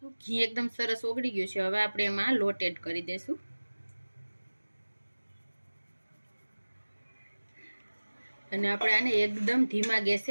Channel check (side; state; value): both; inverted; correlation -1.00